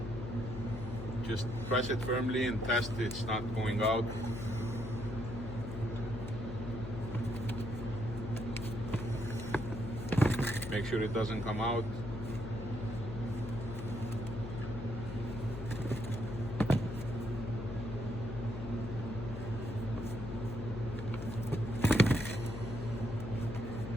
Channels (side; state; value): left; noise; hum, 7 dB below the sound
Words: Just press it firmly and test it's not going out. Make sure it doesn't come out.